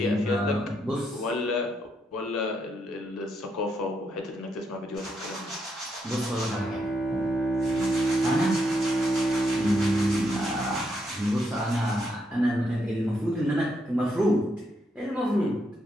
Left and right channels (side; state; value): both; normal; correlation 0.78